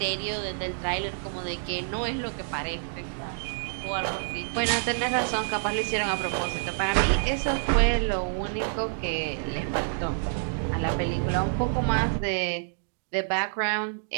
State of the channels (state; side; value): silent; left; digital silence